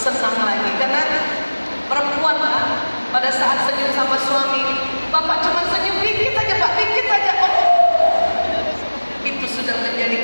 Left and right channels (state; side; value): inverted; both; correlation -1.00